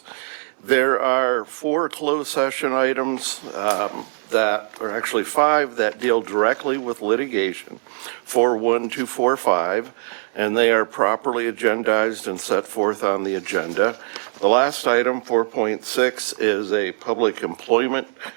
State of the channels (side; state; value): left; silent; digital silence